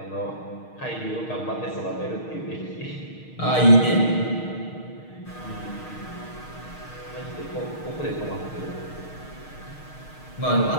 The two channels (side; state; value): right; late; 6.5 ms